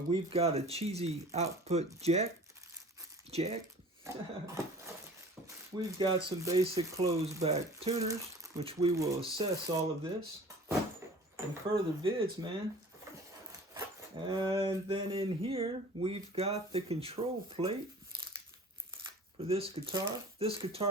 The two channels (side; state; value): both; normal; correlation 0.44